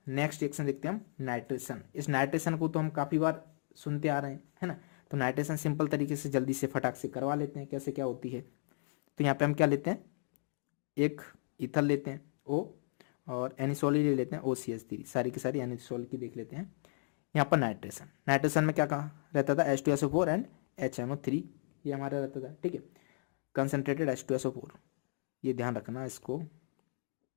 नेक्स्ट रिएक्शन देखते हैं हम, नाइट्रेशन। इस नाइट्रेशन को तो हम काफी बार सुनते आ रहे हैं, है ना। तो नाइट्रेशन सिंपल तरीके से जल्दी से फटाक से करवा लेते हैं, कैसे क्या होती है। तो यहाँ पे हम क्या लेते हैं, एक ईथर लेते हैं O, और एनिसोल ही ले लेते हैं OCH3, सारी की सारी एनिसोल की देख लेते हैं। यहाँ पर नाइट्रेशन में क्या कहा रहता था, H2SO4 एंड HNO3, ये हमारा रहता था। ठीक है, कंसंट्रेटेड H2SO4, ये ध्यान रखना इसको,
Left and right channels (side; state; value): right; silent; digital silence